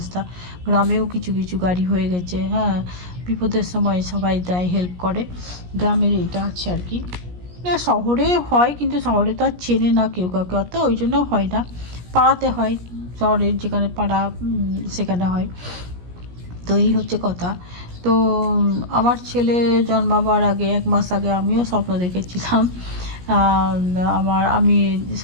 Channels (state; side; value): late; left; 17 ms